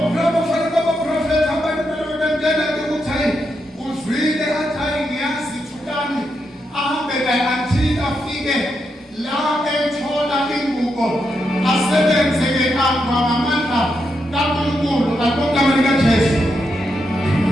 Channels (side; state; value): both; normal; correlation 0.83